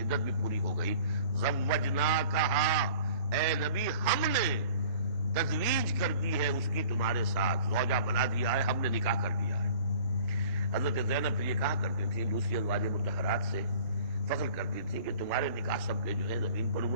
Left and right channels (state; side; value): inverted; both; correlation -0.48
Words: عدت بھی پوری ہو گئی، زوجناکہا، اے نبی ہم نے تزویج کر دی ہے اس کی تمہارے ساتھ، زوجہ بنا دیا ہے، ہم نے نکاح کر دیا ہے۔ حضرت زینب پھر یہ کہا کرتی تھی، دوسری ازواج مطہرات سے فخر کرتی تھی کہ تمہارے نکاح سب کے جو ہے زمین پر